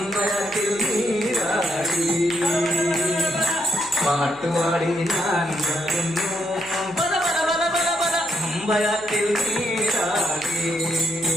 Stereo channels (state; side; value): noise; left; hum, 24 dB below the sound